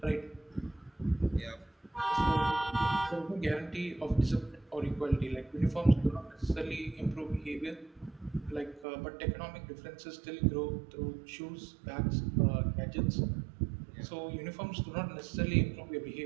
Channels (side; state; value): left; drops out; at 8.8 s